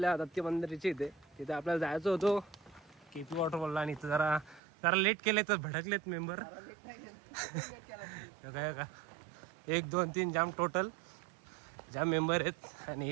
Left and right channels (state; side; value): drops out; left; at 4.6 s